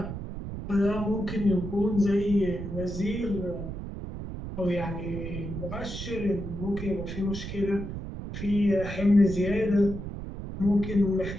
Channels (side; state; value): right; noise; rumble, 7 dB below the sound